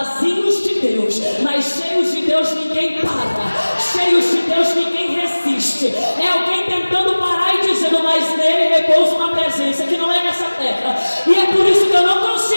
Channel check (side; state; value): both; inverted; correlation -1.00